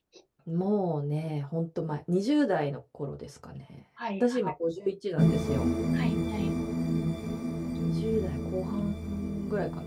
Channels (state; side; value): identical; both; correlation 1.00